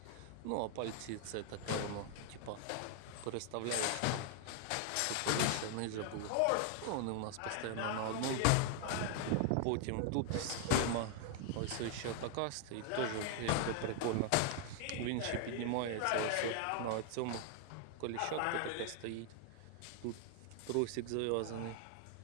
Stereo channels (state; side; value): different; both; correlation 0.00